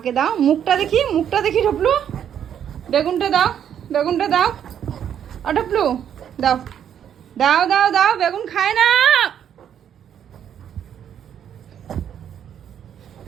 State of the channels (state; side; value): quieter; left; 9.2 dB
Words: দাও। মুখটা দেখি, মুখটা দেখি ঢপলু। বেগুনটা দাও, বেগুনটা দাও। ও ঢপলু, দাও দাও দাও দাও, বেগুন খায় না।